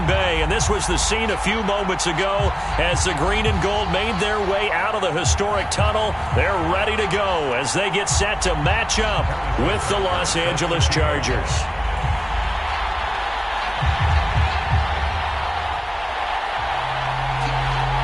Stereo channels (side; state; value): both; identical; correlation 1.00